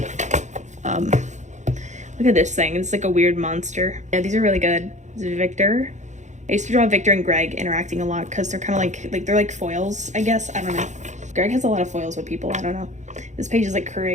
look at this thing. It's, like, a weird monster. Yeah, these are really good. This is Victor. I used to draw Victor and Greg interacting a lot, because they're kind of, like, they're, like, foils, I guess. I don't know. Greg has a lot of foils with people. I don't know. This page is like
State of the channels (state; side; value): late; left; 0.35 ms